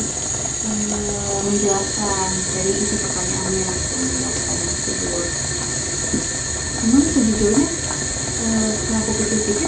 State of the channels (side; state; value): both; identical; correlation 1.00